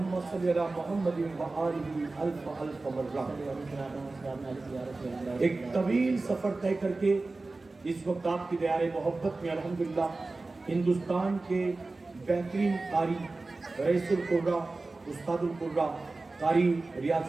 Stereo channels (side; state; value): left; quieter; 3.4 dB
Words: صلی علی محمد و آلہ الف الف مرہ. ایک طویل سفر طے کر کے اس وقت آپ کی دیار محبت میں الحمدللہ ہندوستان کے بہترین قاری رئیس القرہ استاد القرہ قاری